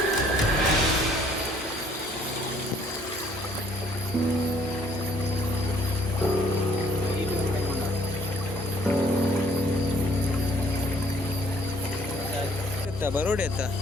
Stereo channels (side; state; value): both; normal; correlation 0.61